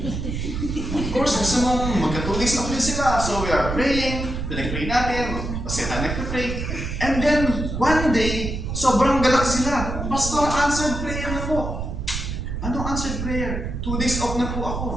Of course, gusto mong magka 2 days off din sila. So we are praying, pinag-pray natin, kasi tayo nagpa-pray. And then, one day, sobrang galak sila. Pastor, answered prayer na po. Anong answered prayer? 2 days off na po ako.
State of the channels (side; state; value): right; noise; rumble, 4 dB below the sound